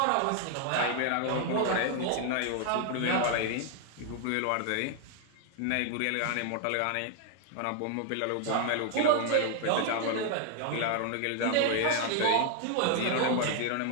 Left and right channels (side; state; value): both; different; correlation 0.00